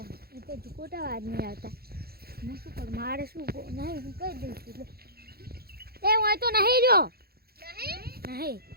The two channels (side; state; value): left; late; 0.45 ms